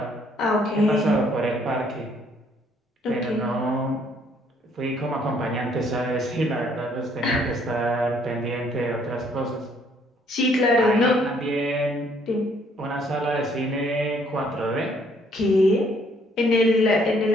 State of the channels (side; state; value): both; normal; correlation 0.65